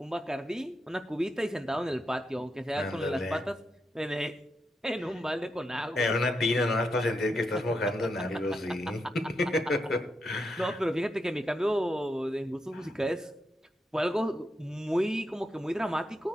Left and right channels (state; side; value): normal; both; correlation 0.84